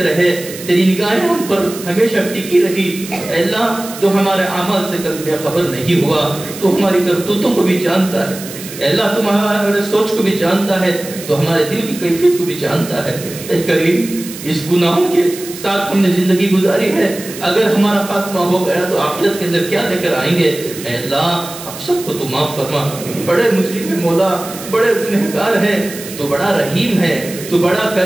رہے، تیری نگاہیں ہم پر ہمیشہ ٹکی رہی. اے اللہ تو ہمارے اعمال سے کبھی بے خبر نہیں ہوا، تو ہماری کرتوتوں کو بھی جانتا ہے. اے اللہ تم ہمارے سوچ کو بھی جانتا ہے، تو ہمارے دل کی کیفیت کو بھی جانتا ہے. اے کریم اس گناہوں کے ساتھ ہم نے زندگی گزاری ہے، اگر ہمارا خاتمہ ہو گیا تو آخرت کے اندر کیا لے کر آئیں گے؟ اے اللہ ہم سب کو تو معاف فرما. بڑے مجرم ہے مولا, بڑے گنہگار ہیں, تو بڑا رحیم ہے, تو بڑا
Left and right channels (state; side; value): noise; right; hiss, 13 dB below the sound